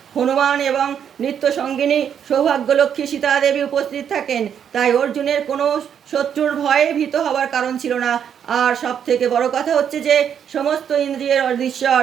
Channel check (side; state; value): left; quieter; 8.4 dB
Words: হনুমান এবং নিত্য সঙ্গিনী সৌভাগ্যলক্ষ্মী সীতা দেবী উপস্থিত থাকেন। তাই অর্জুনের কোনো শত্রুর ভয়ে ভীত হবার কারণ ছিল না। আর সব থেকে বড় কথা হচ্ছে যে সমস্ত ইন্দ্রিয়ের অধীশ্বর